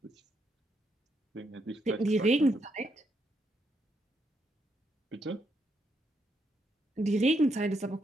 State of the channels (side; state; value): both; normal; correlation 0.78